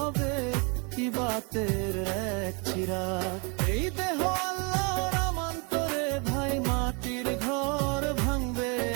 ইবাতের এক চিরাগ। এই দেহ আল্লাহর আমান্তরে ভাই, মাটির ঘর ভাঙবে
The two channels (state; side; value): quieter; left; 33.0 dB